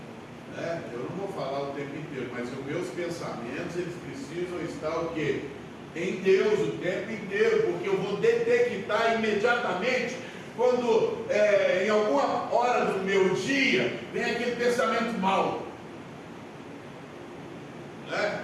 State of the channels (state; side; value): identical; both; correlation 1.00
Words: né? Eu não vou falar o tempo inteiro, mas os meus pensamentos, eles precisam estar o quê? em Deus o tempo inteiro, porque eu vou detectar imediatamente quando em alguma hora do meu dia vem aquele pensamento mau, né?